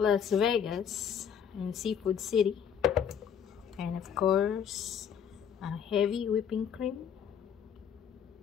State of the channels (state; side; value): quieter; right; 8.0 dB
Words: Vegas, in Seafood City. And of course, a heavy whipping cream.